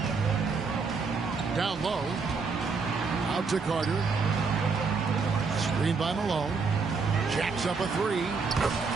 Down low. Out to Carter. Screen by Malone. Jacks up a three.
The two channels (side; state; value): left; quieter; 4.8 dB